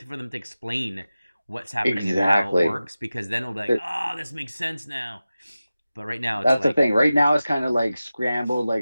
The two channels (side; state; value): both; inverted; correlation -0.95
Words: for them to explain what's happening and how it works, because then it'll be like, oh, this makes sense now. But right now, it's That's like, the thing. Right now, it's kind of like scrambled.